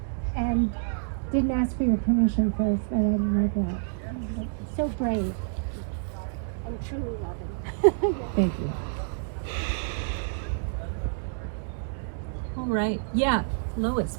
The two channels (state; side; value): silent; left; digital silence